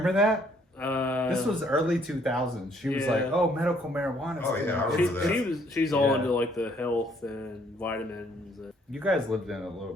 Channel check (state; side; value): normal; both; correlation 0.65